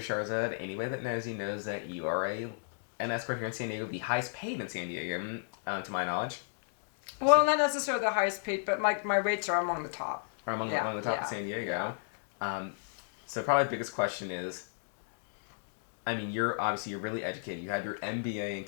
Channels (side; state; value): right; silent; digital silence